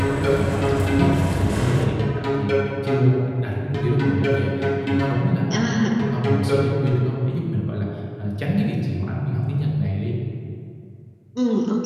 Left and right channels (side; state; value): both; identical; correlation 1.00